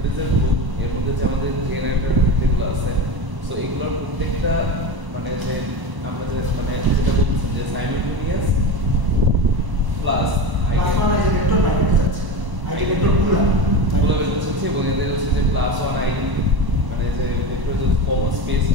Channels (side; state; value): left; late; 1.0 ms